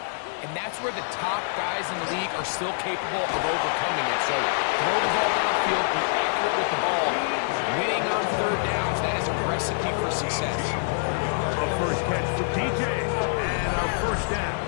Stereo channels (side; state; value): right; silent; 61 dB below the other